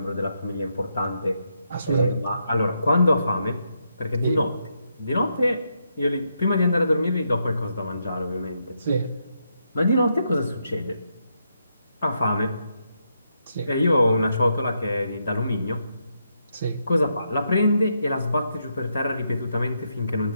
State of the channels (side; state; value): both; inverted; correlation -0.81